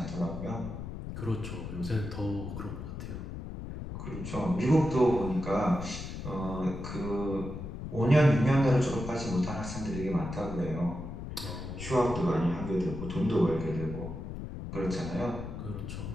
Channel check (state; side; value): noise; left; rumble, 8 dB below the sound